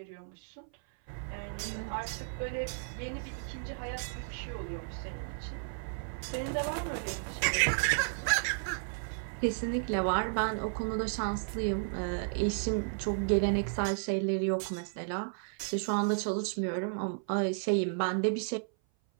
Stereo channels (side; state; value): left; silent; 56 dB below the other